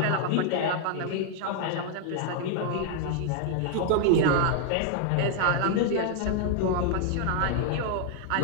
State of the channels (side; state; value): both; different; correlation 0.00